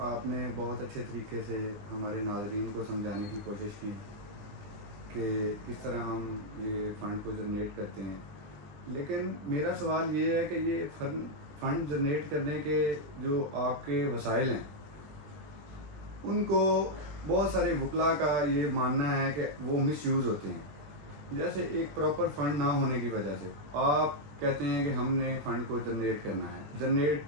آپ نے بہت اچھے طریقے سے ہمارے ناظرین کو سمجھانے کی کوشش کی کہ کس طرح ہم یہ فنڈ کو جنریٹ کرتے ہیں، لیکن میرا سوال یہ ہے کہ یہ فنڈ جنریٹ کرنے کے جو آپ کے وسائل ہیں ان کو بہت سارے وکلاء کا یہ ماننا ہے کہ وہ مس یوز ہوتے ہیں. جیسے ایک پراپر فنڈ نہ ہونے کی وجہ سے آپ کہتے ہیں کہ ہم نے فنڈ کو جنریٹ کرنا ہے. جنریٹ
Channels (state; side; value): late; left; 20 ms